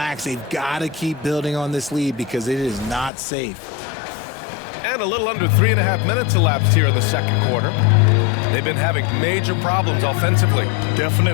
They've got to keep building on this lead because it is not safe. And a little under 3.5 minutes elapsed here in the second quarter. They've been having major problems offensively.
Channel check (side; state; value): right; drops out; at 3.1 s